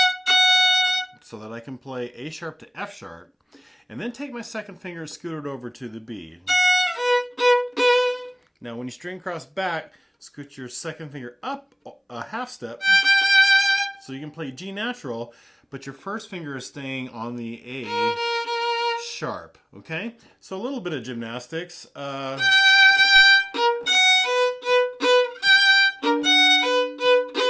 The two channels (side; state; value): both; identical; correlation 1.00